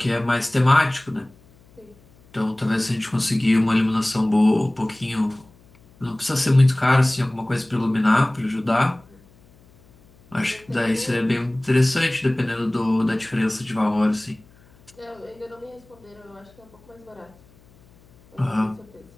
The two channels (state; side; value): noise; left; hum, 28 dB below the sound